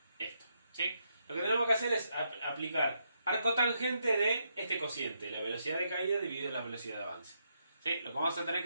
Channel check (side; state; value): both; inverted; correlation -0.79